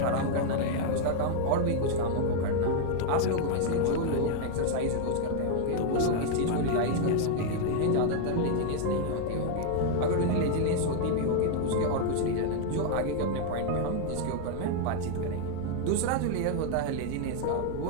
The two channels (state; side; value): different; both; correlation 0.00